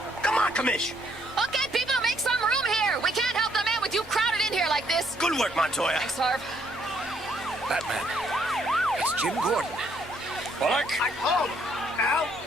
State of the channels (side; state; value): both; normal; correlation 0.69